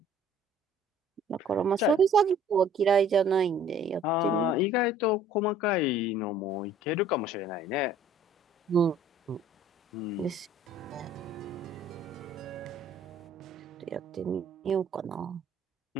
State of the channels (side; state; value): both; normal; correlation 0.53